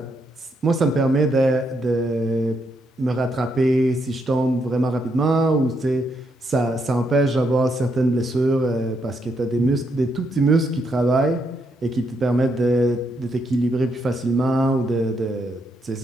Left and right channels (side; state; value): both; normal; correlation 0.77